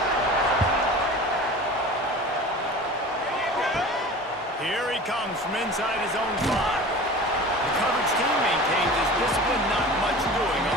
Here he comes from inside his own 5. The coverage team maintains his discipline, not much doing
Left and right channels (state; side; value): normal; both; correlation 0.38